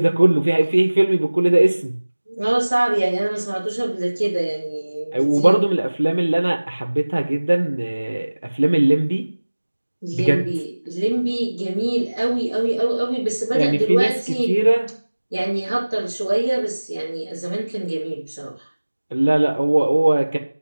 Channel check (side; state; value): both; inverted; correlation -1.00